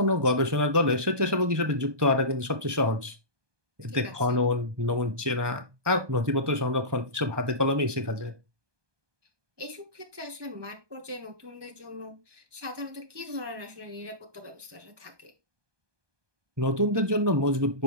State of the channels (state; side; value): late; left; 1.2 ms